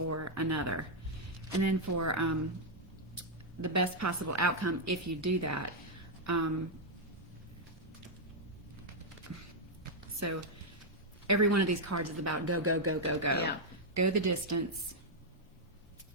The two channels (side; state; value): both; normal; correlation -0.02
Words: or another. And then for the best possible outcome, if you do that, so every one of these cards is about go, go, go, go, go. Yeah. Go the distance.